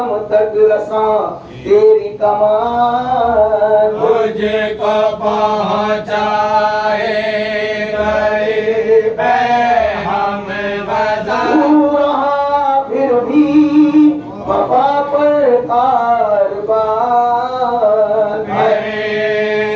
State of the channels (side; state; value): both; identical; correlation 1.00